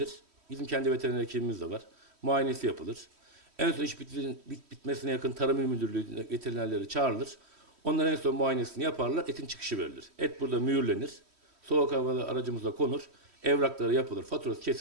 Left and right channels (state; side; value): late; left; 3.1 ms